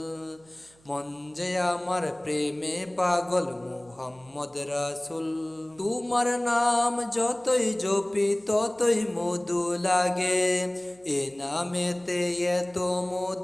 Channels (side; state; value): right; noise; hum, 30 dB below the sound